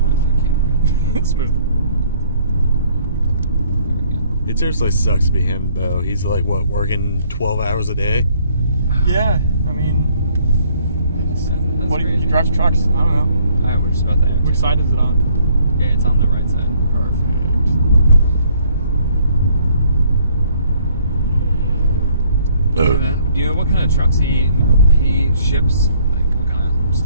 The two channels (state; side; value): inverted; both; correlation -0.62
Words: It's smooth. It seriously sucks to be him, though. He's like, what, working 12 hours a day? Yeah, I mean, it's, That's what crazy. he drives trucks. I don't know. Alright, we're just about there. Which side is it on? Yeah, it's on the right side. Perfect. And then, do you know what kind of trucks he ships? Like, what kind of